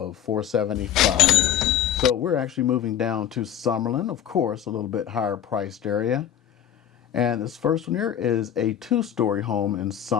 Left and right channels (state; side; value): quieter; right; 10.1 dB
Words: $475. So we're actually moving down to Summerlin, of course, a little bit higher priced area. And this first one here is a 2-story home in